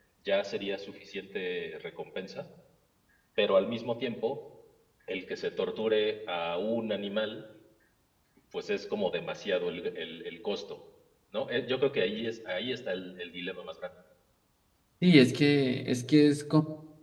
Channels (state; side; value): identical; both; correlation 1.00